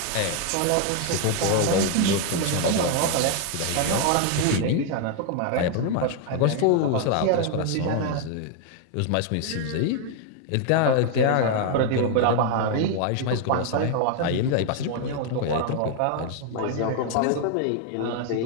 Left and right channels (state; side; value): different; both; correlation 0.00